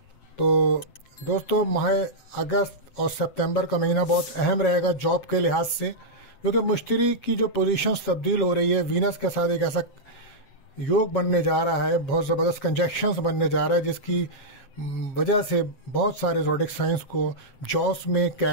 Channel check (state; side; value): late; right; 7.7 ms